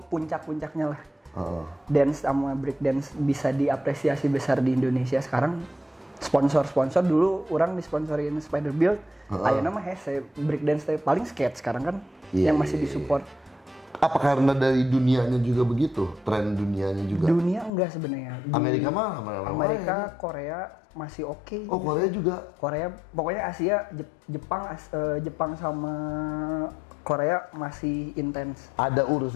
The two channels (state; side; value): drops out; right; at 17.7 s